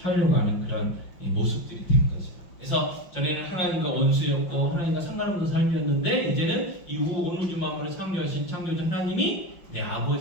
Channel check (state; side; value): late; right; 5.5 ms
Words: 하는 그런 모습들이 된 거죠. 그래서 전에는 하나님과 원수였고 하나님과 상관없는 삶이었는데 이제는 이후 온 우주 만물을 창조하신 창조주 하나님이 내